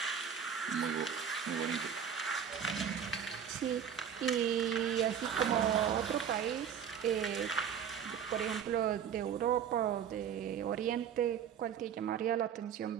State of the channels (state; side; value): quieter; left; 8.1 dB